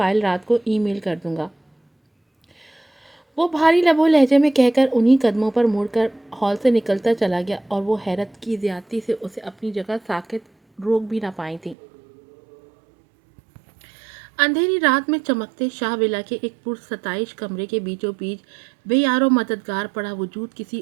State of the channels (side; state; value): left; drops out; at 11.8 s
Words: رات کو ای میل کر دوں گا۔ وہ بھاری لب و لہجے میں کہہ کر انہی قدموں پر مڑ کر ہال سے نکلتا چلا گیا اور وہ حیرت کی زیادتی سے اسے اپنی جگہ ساکت روک بھی نہ پائی تھی۔ اندھیری رات میں چمکتے شاہ ولا کے ایک پرستائش کمرے کے بیچوں بیچ بے یار و مددگار پڑا وجود کسی